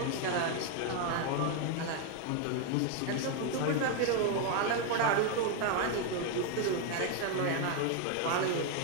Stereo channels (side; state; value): both; different; correlation 0.01